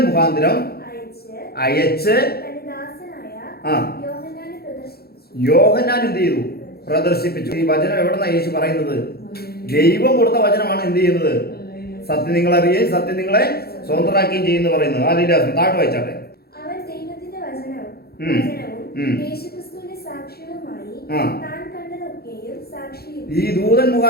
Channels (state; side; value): late; right; 0.46 ms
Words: മുഖാന്തരം അയച്ച് യോഹന്നാൻ എന്ത് ചെയ്തു? പ്രദർശിപ്പിച്ചു. ഈ വചനം എവിടെന്നാ യേശു പറയുന്നത്? ദൈവം കൊടുത്ത വചനമാണ് എന്ത് ചെയ്യുന്നത്? സത്യം നിങ്ങൾ അറിയുകയും സത്യം നിങ്ങളെ സ്വതന്ത്രമാക്കുകയും ചെയ്യുന്നു പറയുന്നത്. ഹല്ലേലൂയ. താഴെ വായിച്ചാട്ടെ. ഈ ദൂതൻ